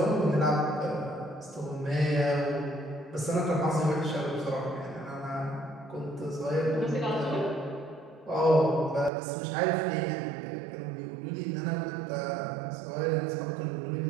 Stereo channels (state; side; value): drops out; left; at 9.1 s